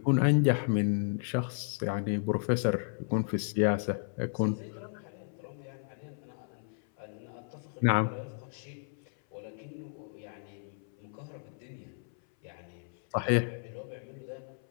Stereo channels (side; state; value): right; silent; 55 dB below the other